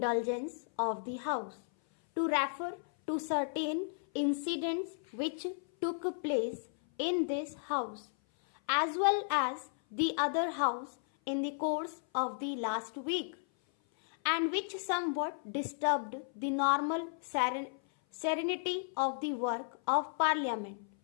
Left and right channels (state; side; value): silent; right; 55 dB below the other